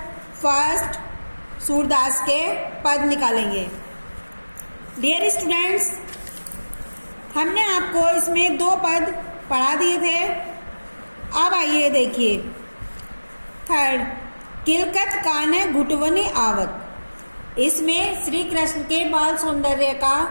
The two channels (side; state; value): both; inverted; correlation -1.00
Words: फर्स्ट सूरदास के पद निकालेंगे। डियर स्टूडेंट्स, हमने आपको इसमें 2 पद पढ़ा दिए थे। अब आइए देखिए थर्ड, किलकत काने घुटवनी आवत। इसमें श्री कृष्ण के बाल सौंदर्य का